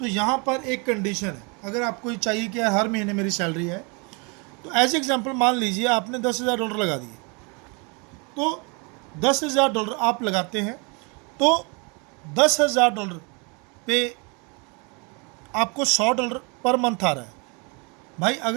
यहाँ पर एक कंडीशन है। अगर आपको ये चाहिए कि हर महीने मेरी सैलरी है, तो एज एग्जांपल मान लीजिए आपने $10,000 लगा दिए, तो $10,000 आप लगाते हैं तो $10,000 पे आपको $100 पर मंथ आ रहा है। भाई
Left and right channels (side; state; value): left; quieter; 32.1 dB